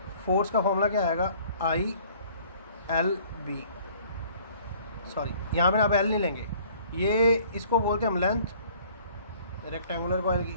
फोर्स का फॉर्मूला क्या आएगा? ILB. सॉरी, यहाँ पे आप L नहीं लेंगे, ये इसको बोलते हैं हम लेंथ रेक्टेंगुलर कॉइल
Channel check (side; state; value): both; inverted; correlation -0.54